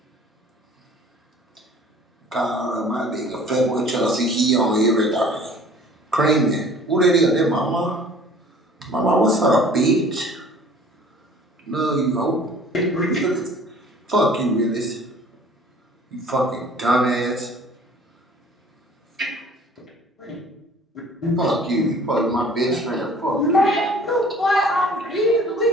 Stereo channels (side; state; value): both; normal; correlation 0.51